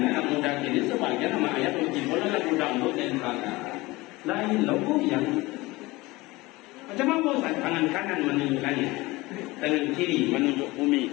muda kini sebagian nama ayat uji bola lagu dangdut dan kata lain logo yang macam apa Ustaz? Tangan kanan menunjuk langit, tangan kiri menunjuk bumi,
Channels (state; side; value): quieter; right; 21.3 dB